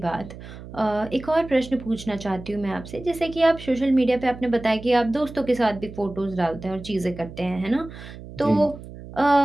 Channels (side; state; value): right; noise; hum, 14 dB below the sound